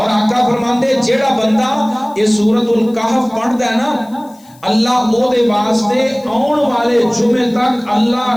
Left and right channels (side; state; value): left; noise; hiss, 28 dB below the sound